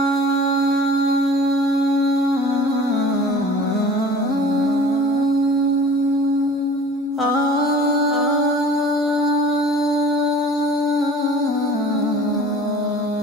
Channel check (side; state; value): both; normal; correlation 0.45